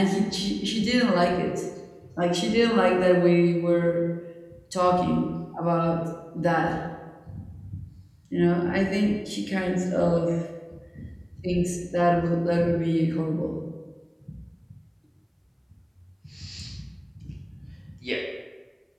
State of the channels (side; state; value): both; identical; correlation 1.00